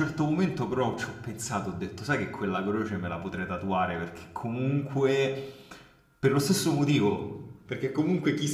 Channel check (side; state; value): both; identical; correlation 1.00